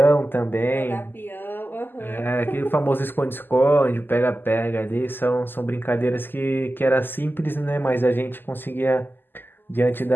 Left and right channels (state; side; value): late; right; 0.094 ms